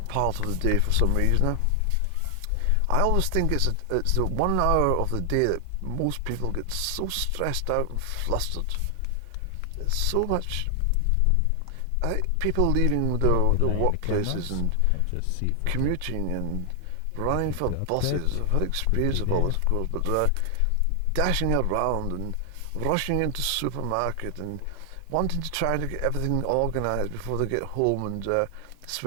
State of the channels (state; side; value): different; both; correlation 0.00